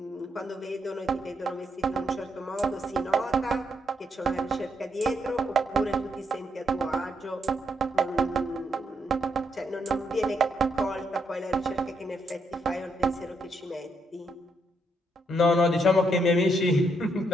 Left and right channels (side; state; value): both; normal; correlation 0.76